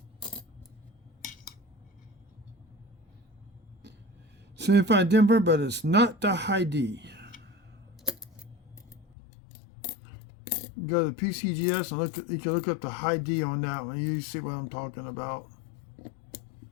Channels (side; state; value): right; drops out; at 9.1 s